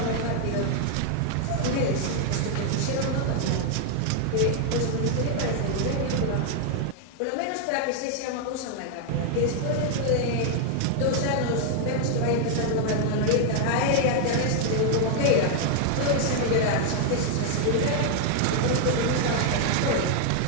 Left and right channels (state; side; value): different; both; correlation 0.00